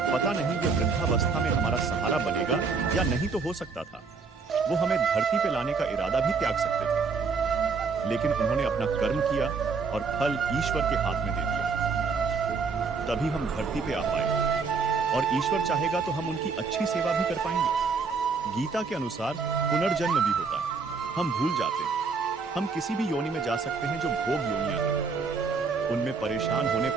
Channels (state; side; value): quieter; left; 4.8 dB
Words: पता नहीं ये वृद्धावस्था में हमारा सहारा बनेगा या नहीं, तो हो सकता था वो हमें धरती पे लाने का इरादा भी त्याग सकते थे। लेकिन उन्होंने अपना कर्म किया और फल ईश्वर के हाथ में दे दिया। तभी हम धरती पे आ पाए, और ईश्वर चाहेगा तो हम उनकी अच्छी सेवा भी कर पाएंगे। गीता के अनुसार पुनर्जन्म भी होता है। हम भूल जाते हैं, हम किसी भी योनि में जा सकते हैं जो भोग योनियां हैं। उनमें परेशान होने